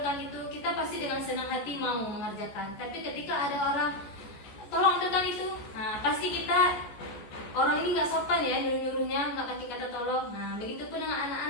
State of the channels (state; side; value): late; right; 14 ms